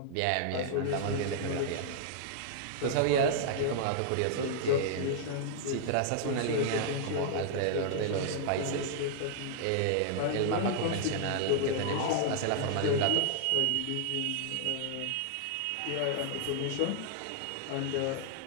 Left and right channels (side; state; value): both; different; correlation -0.01